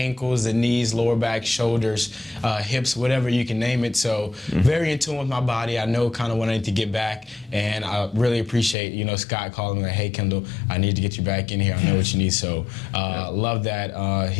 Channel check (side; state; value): right; drops out; at 8.8 s